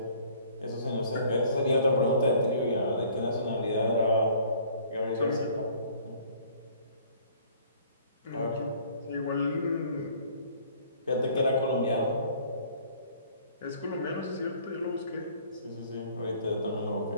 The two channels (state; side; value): inverted; both; correlation -0.55